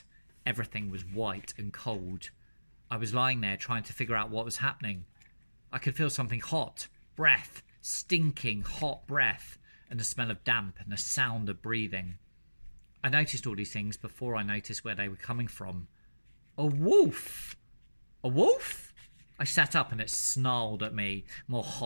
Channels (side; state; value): both; inverted; correlation -1.00